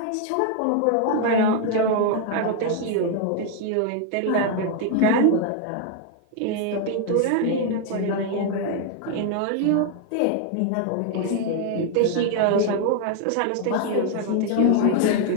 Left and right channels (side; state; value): both; different; correlation 0.00